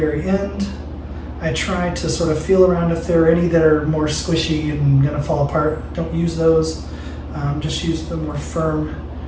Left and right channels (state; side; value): identical; both; correlation 1.00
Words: end. I try to sort of feel around if there are any that are more squishy and gonna fall apart. Don't use those. Just use the more firm